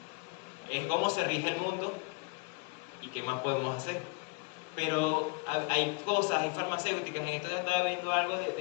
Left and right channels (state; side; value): quieter; right; 31.0 dB